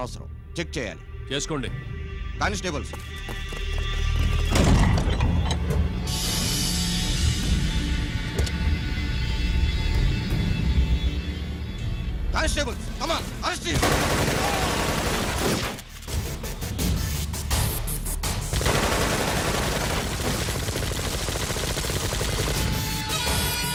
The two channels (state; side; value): identical; both; correlation 1.00